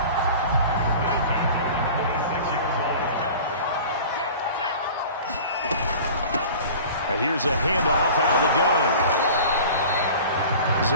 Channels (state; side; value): inverted; both; correlation -0.40